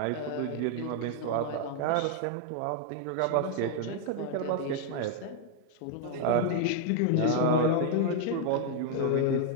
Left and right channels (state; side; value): different; both; correlation 0.00